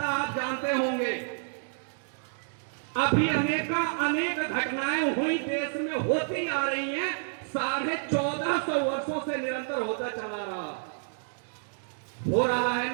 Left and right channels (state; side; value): silent; left; digital silence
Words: आप जानते होंगे। अभी अनेक घटनाएं हुई देश में होती आ रही हैं। 1450 वर्षों से निरंतर होता चला रहा है